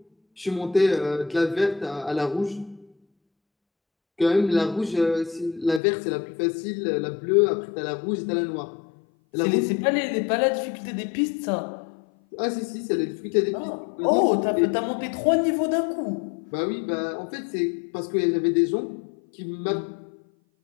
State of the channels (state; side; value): drops out; right; at 5.8 s